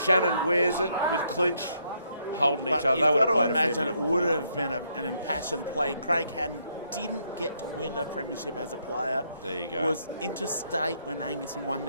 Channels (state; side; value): inverted; both; correlation -0.73